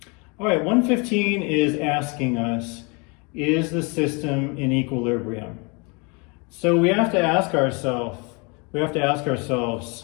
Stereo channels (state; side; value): quieter; right; 31.2 dB